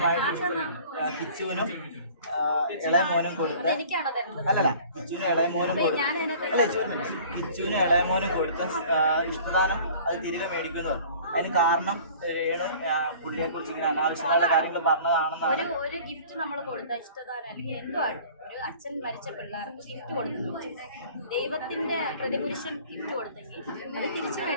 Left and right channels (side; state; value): both; inverted; correlation -0.47